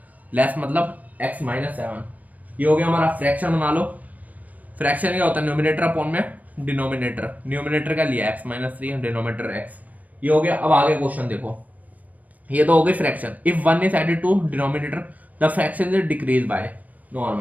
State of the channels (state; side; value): late; left; 0.074 ms